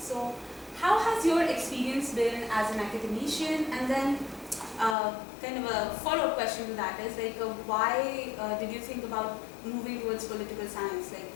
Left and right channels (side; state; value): right; drops out; at 5.0 s